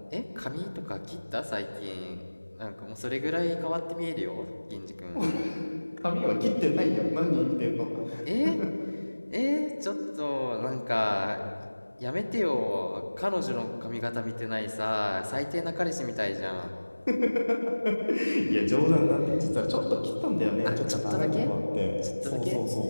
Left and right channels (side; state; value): both; inverted; correlation -1.00